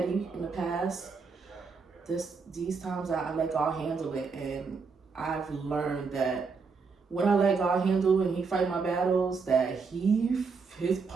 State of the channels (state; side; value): quieter; left; 4.9 dB